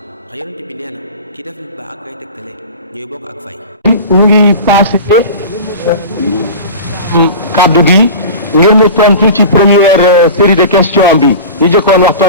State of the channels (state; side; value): inverted; both; correlation -0.33